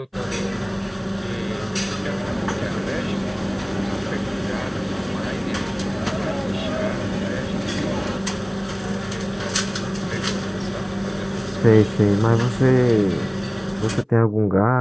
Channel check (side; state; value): both; identical; correlation 1.00